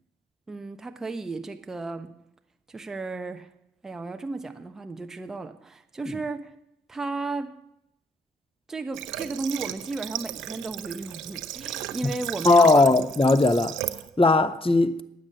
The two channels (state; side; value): normal; both; correlation 0.70